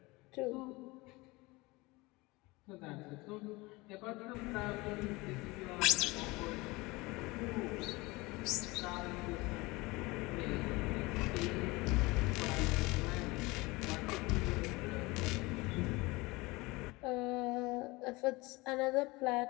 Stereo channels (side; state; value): right; quieter; 23.0 dB